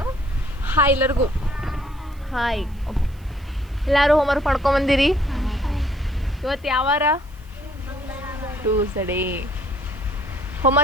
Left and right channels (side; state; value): right; noise; hiss, 29 dB below the sound